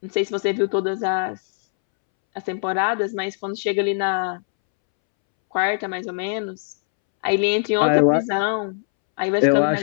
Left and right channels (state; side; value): silent; right; 64 dB below the other